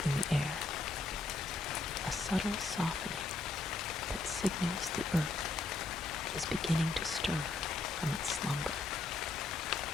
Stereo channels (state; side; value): quieter; right; 3.6 dB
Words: in the air, a subtle softening that signals the earth is beginning to stir from its slumber.